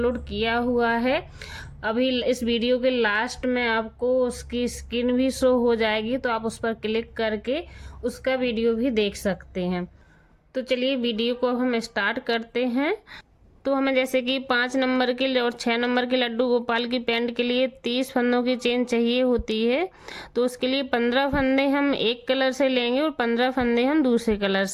किया हुआ है। अभी इस वीडियो के लास्ट में आपको उसकी स्क्रीन भी शो हो जाएगी, तो आप उस पर क्लिक करके उसका वीडियो भी देख सकते हैं। तो चलिए वीडियो को अब हम स्टार्ट करते हैं। तो हमें जैसे कि 5 नंबर के और 6 नंबर के लड्डू गोपाल की पैंट के लिए 30 फंदों की चेन चाहिए होती है। तो उसके लिए 15 फंदे हम एक कलर से लेंगे और 15 फंदे हम दूसरे कलर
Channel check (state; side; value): identical; both; correlation 1.00